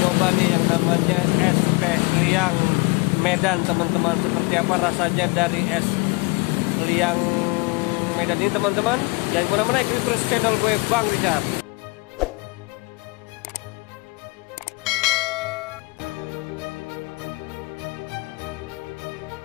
nih yang namanya es teh liang Medan teman-teman. Seperti apa rasanya dari es liang Medan ini teman-teman. Jangan kemana-mana, ikuti terus channel gue Bang Richard.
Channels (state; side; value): quieter; right; 27.6 dB